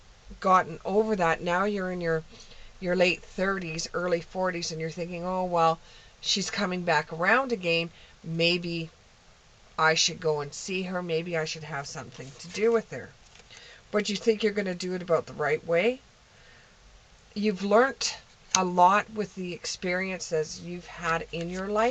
gotten over that. Now you're in your late 30s, early 40s, and you're thinking, oh, well, she's coming back around again. Maybe I should go and see her. Maybe I should have something to do with her. But you think you're going to do it about the right way. You've learnt a lot with the experiences you've had in your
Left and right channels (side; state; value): both; identical; correlation 1.00